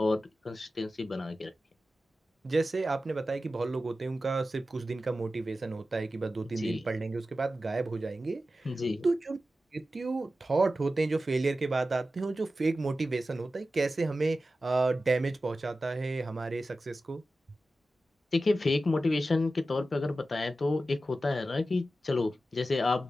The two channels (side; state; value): both; normal; correlation 0.93